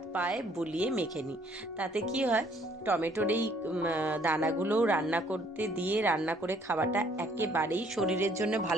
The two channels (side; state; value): both; normal; correlation 0.63